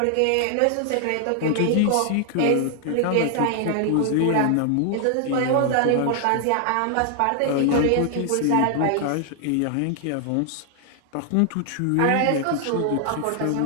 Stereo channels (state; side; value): different; both; correlation 0.00